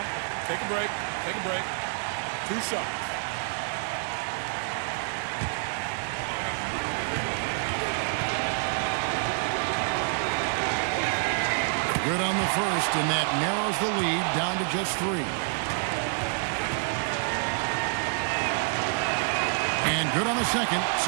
Take a break. Take a break. 2 shots. Good on the first, and that narrows the lead down to just 3. And good on the second,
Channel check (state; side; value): silent; left; 60 dB below the other